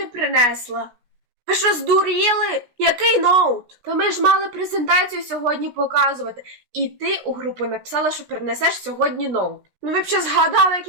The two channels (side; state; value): left; late; 16 ms